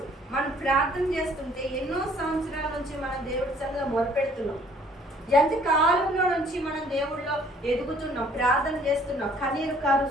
మనం ప్రార్థన చేస్తుంటే ఎన్నో సంవత్సరాల నుంచి మనం దేవుడి సంగతి మొదలుపెడుతున్నాం. ఎంత కాలంలో నుంచి మనం దేవుడిలో ఎదుగుతున్నాం, ప్రార్థన చేస్తున్నాం, కన్నీరు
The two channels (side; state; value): both; normal; correlation 0.58